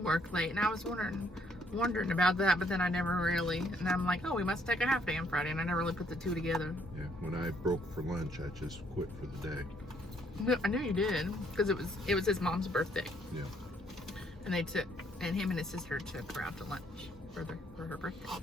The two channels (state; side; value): normal; both; correlation 0.67